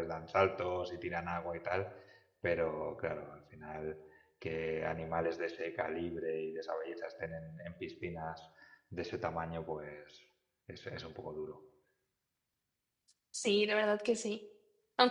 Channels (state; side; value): identical; both; correlation 1.00